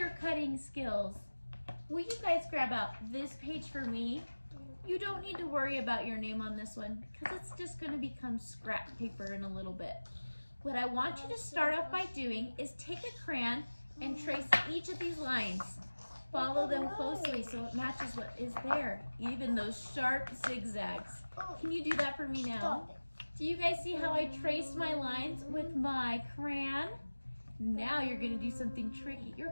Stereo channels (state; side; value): inverted; both; correlation -1.00